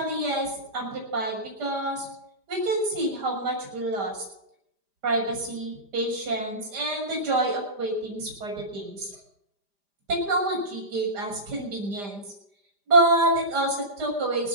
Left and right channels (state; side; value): late; left; 5.0 ms